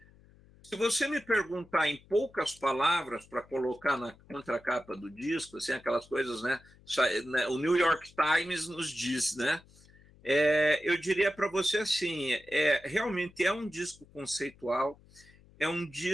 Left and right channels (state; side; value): noise; left; hum, 26 dB below the sound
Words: se você me perguntar em poucas palavras para colocar na contracapa do disco, assim, aquelas coisas, né? O New York Times nos diz, né? Eu diria para você assim, realmente é um disco conceitual, é um